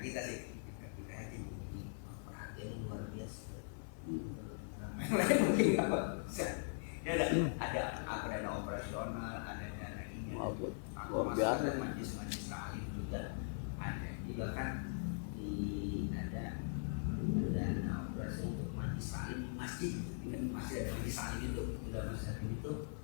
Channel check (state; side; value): silent; right; 50 dB below the other